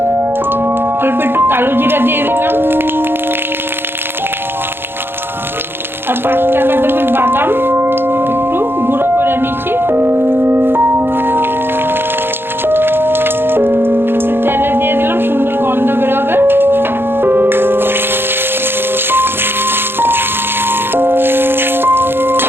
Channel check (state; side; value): late; left; 0.10 ms